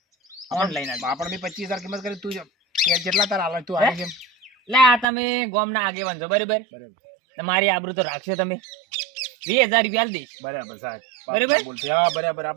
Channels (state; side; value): drops out; left; at 5.1 s